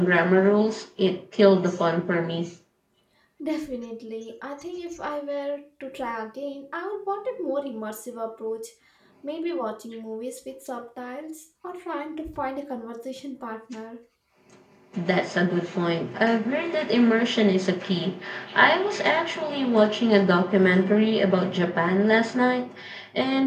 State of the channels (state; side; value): identical; both; correlation 1.00